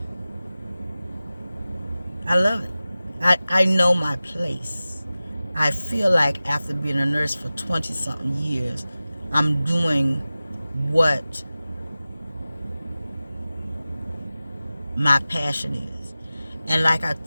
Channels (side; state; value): both; inverted; correlation -0.96